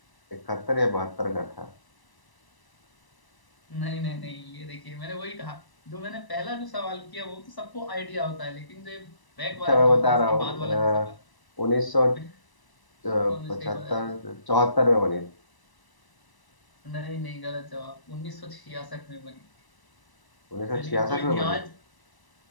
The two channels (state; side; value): late; right; 1.0 ms